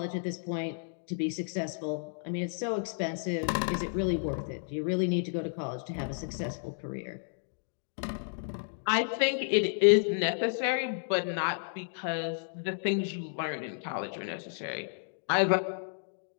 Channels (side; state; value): right; silent; digital silence